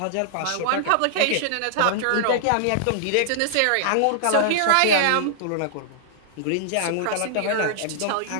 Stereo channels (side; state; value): both; different; correlation -0.01